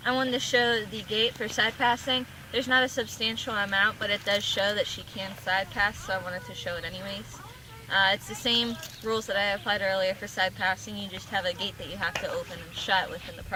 I wanted to show the gate for side passing. There's not a substantial amount, but it does show that she can side pass, so I wanted to show it anyways. It's the same rules that I applied earlier for side passing. You just have a gate that you have to open and shut within the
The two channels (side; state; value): both; identical; correlation 1.00